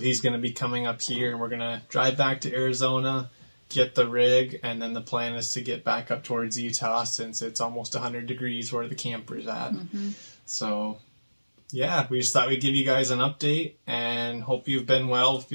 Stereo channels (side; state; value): both; inverted; correlation -1.00